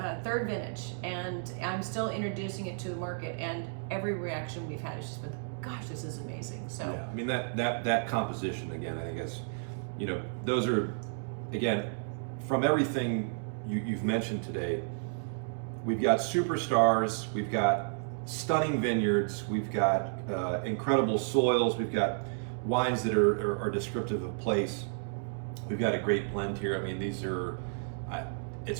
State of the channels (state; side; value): silent; left; digital silence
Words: vintage, and I'm still introducing it to the market, and every reaction we've had has just been, gosh, this is amazing. So yeah, I mean that composition, again, I think it's, those are, again, from everything you've mentioned today, we've got superstars, we've got stunning vineyards, we've got incredible soils, we've got wines that are descriptive of place. We've got a great blend here. I mean, these are,